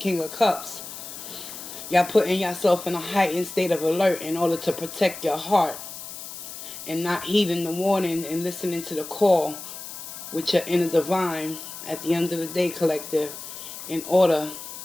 of Cups, y'all putting yourself in a heightened state of alert in order to protect your heart and not heeding the warning and listening to the call with your inner divine at the end of the day, collective, in order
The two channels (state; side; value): noise; left; hiss, 11 dB below the sound